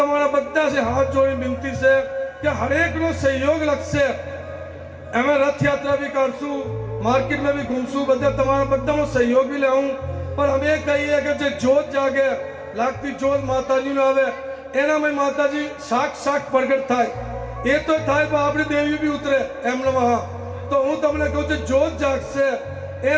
બધા से हाथ जोड़ी विनती છે કે હરેક નો સહયોગ લાગશે અમે રથ યાત્રા भी કરશું मार्केट में भी घूमसू बदा तमारा बदा नो सहयोग भी लेऊं पर हमें कहिए कि जो जोत जागे लागती जोत माताजी नो आवे एना में माताजी साक्षात प्रगट थाय ए तो थाय पर आपणी देवी भी उतरे एम नमः तो हूँ तमने कहूं छे जोत जागशे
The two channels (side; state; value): both; identical; correlation 1.00